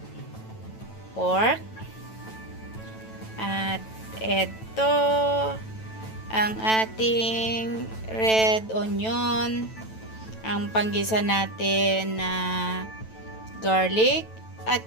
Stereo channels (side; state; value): right; late; 9.1 ms